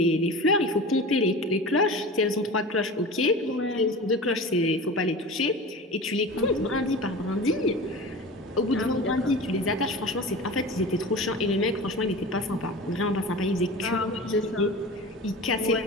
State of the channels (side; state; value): both; normal; correlation 0.33